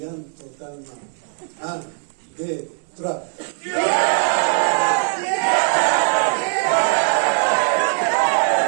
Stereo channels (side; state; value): left; silent; 60 dB below the other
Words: totalement. 1, 2, 3.